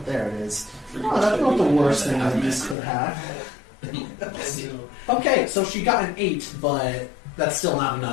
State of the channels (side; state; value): right; drops out; at 2.8 s